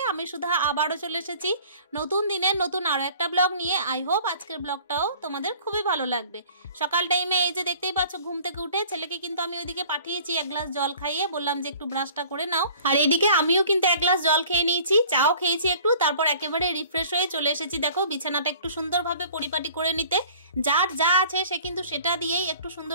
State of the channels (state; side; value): inverted; both; correlation -0.49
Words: আমি সুধা আবারও চলে এসেছি নতুন দিনের নতুন আরও একটা ব্লগ নিয়ে। আই হোপ আজকের ব্লগটাও তোমাদের খুবই ভালো লাগবে। সকাল টাইমে এই যে দেখতেই পাচ্ছ ঘুম থেকে উঠে ছেলেকে কিন্তু আমি ওইদিকে পাঠিয়েছি এক গ্লাস জল খাইয়ে, বললাম যে একটু ব্রাশটা করে নাও। আর এইদিকে আমিও কিন্তু এক গ্লাস জল খেয়ে নিয়েছি, চাও খেয়েছি একটু, তারপর একেবারে রিফ্রেশ হয়ে চলে এসেছি। দেখো বিছানাটা একটু সুন্দরভাবে পরিপাটি করে নিতে। যার যা আছে সে কিন্তু সেটা দিয়েই একটু